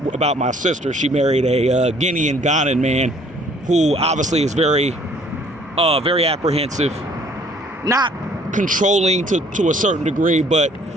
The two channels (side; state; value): both; normal; correlation 0.58